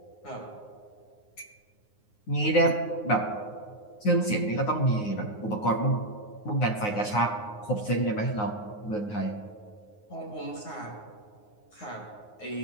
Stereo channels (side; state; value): right; late; 9.5 ms